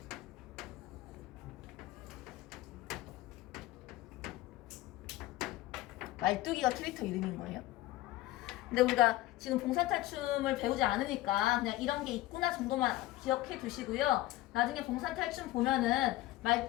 말뚝이가 캐릭터 이름인 거예요. 근데 우리가 지금 봉산탈춤을 배우지 않으니까 그냥 이런 게 있구나 정도만 기억해 두시고요. 나중에 봉산탈춤 보면은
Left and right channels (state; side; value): quieter; right; 16.3 dB